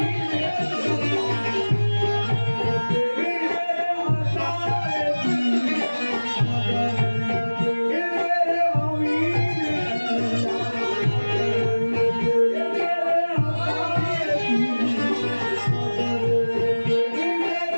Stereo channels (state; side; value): inverted; both; correlation -1.00